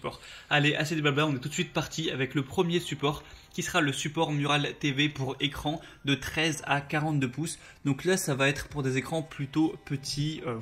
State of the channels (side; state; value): both; identical; correlation 1.00